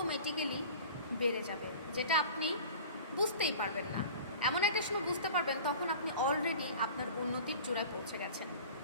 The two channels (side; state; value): both; inverted; correlation -0.41